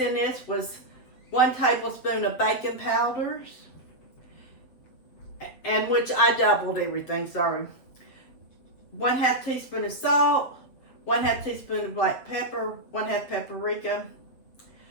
this was 1 tablespoon of baking powders, and which I doubled everything, sorry. 1/2 teaspoon of salt, 1/2 teaspoon of black pepper, 1/2 paprika.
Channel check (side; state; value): right; late; 8.0 ms